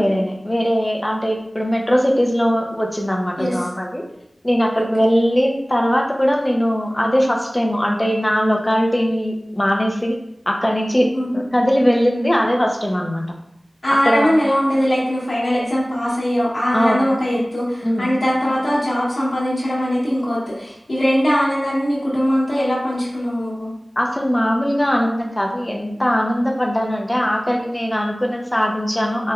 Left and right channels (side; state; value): both; normal; correlation 0.98